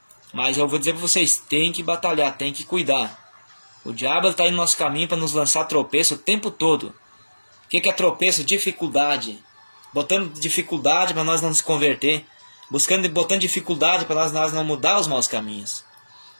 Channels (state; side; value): inverted; both; correlation -1.00